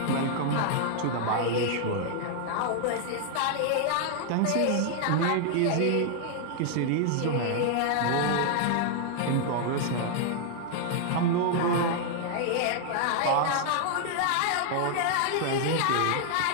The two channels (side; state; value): both; different; correlation 0.00